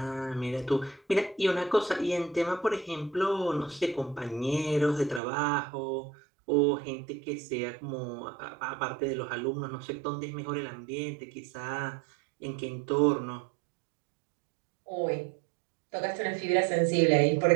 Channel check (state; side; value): drops out; left; at 5.2 s